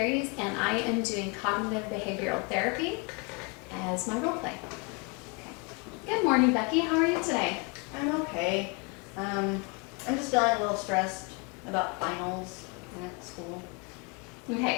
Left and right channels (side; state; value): right; quieter; 30.9 dB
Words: and I am doing cognitive behavioral therapy as my role play. Okay. Good morning, Becky. How are you today? I'm okay. I'm just feeling a little stressed about finals and at school.